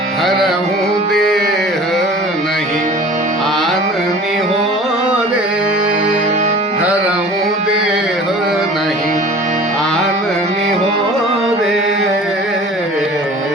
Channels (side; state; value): both; normal; correlation 0.43